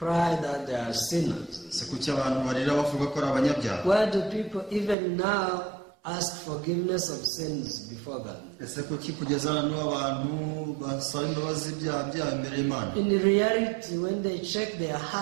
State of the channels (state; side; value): drops out; left; at 5.0 s